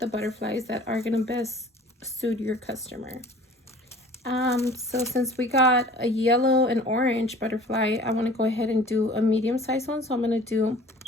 butterflies that are gonna best suit your customer. So since we got a yellow and orange butterfly, I want to go ahead and do a medium size one. So I'm going to do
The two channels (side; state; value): both; normal; correlation 0.47